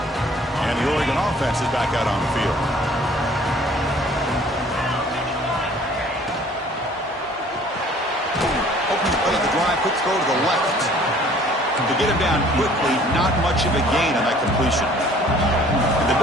And the Oregon offense is back out on the field. Quick throw to the left. To get him down quickly, not much of a gain on that completion. And the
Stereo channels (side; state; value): both; normal; correlation 0.54